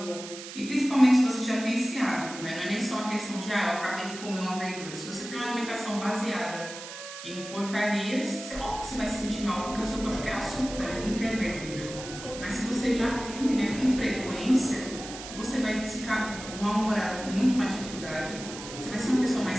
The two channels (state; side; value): noise; right; hiss, 11 dB below the sound